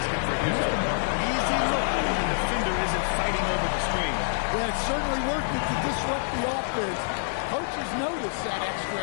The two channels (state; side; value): silent; right; digital silence